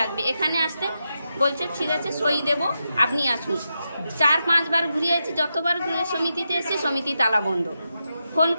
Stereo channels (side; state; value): both; inverted; correlation -0.87